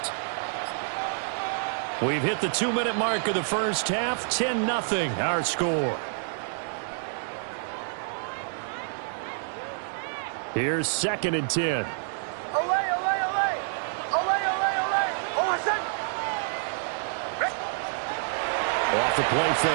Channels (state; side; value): silent; left; digital silence